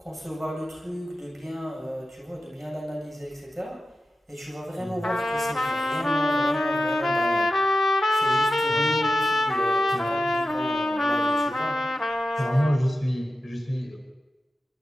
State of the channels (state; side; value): normal; both; correlation 0.93